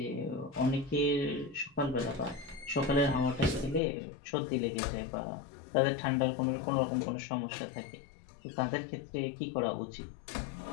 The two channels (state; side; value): drops out; right; at 3.8 s